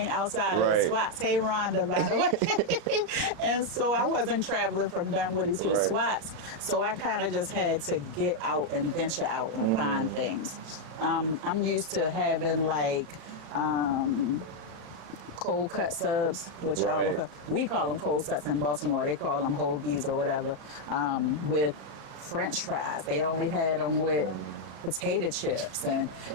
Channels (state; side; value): late; left; 36 ms